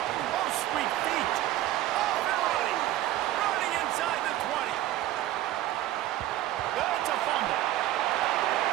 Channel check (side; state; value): left; quieter; 14.3 dB